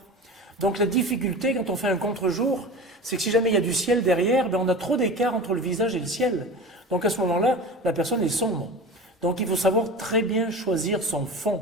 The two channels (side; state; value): both; normal; correlation 0.33